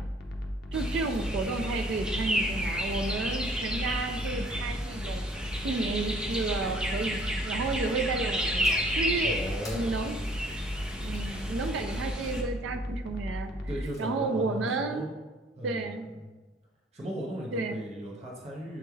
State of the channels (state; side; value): normal; both; correlation 0.57